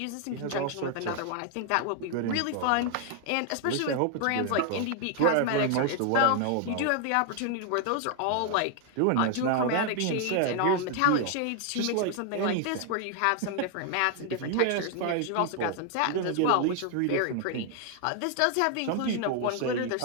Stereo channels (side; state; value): both; different; correlation 0.00